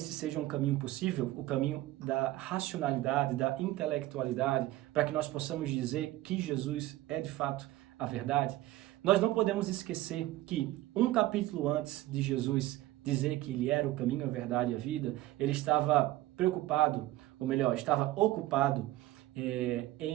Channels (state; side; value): quieter; left; 16.5 dB